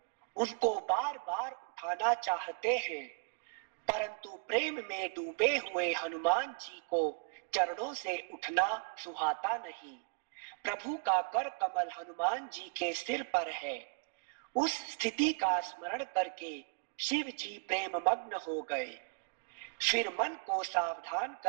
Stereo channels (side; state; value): left; quieter; 38.8 dB